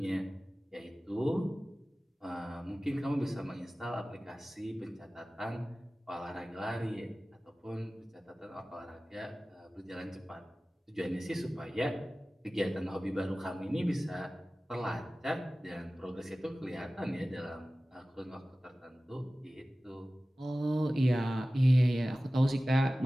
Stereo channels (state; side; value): normal; both; correlation 0.97